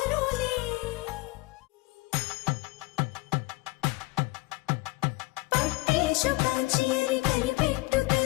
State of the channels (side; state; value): right; quieter; 23.3 dB